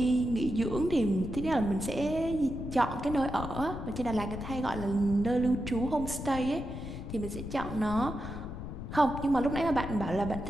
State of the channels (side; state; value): left; noise; rumble, 8 dB below the sound